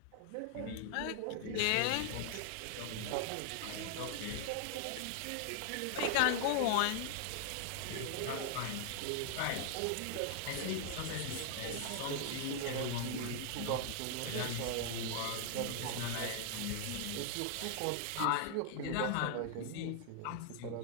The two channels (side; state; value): both; different; correlation 0.00